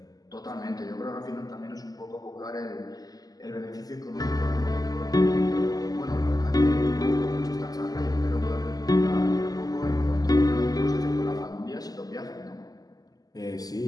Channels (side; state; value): right; late; 0.18 ms